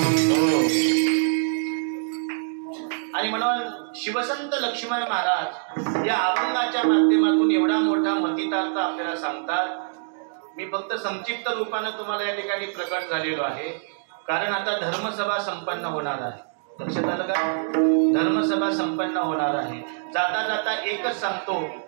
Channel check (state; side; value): silent; left; digital silence